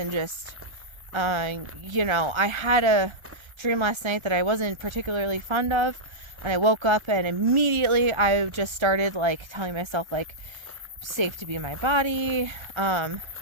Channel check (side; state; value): left; late; 1.3 ms